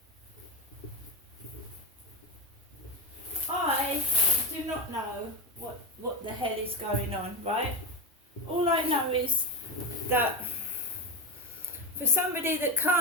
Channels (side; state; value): both; normal; correlation 0.14